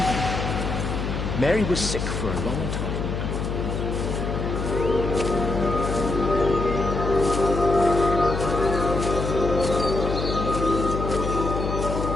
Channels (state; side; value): noise; left; hum, 3 dB below the sound